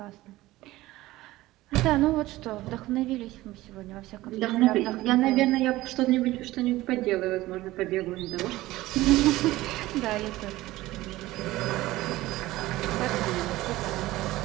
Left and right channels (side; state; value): left; quieter; 17.4 dB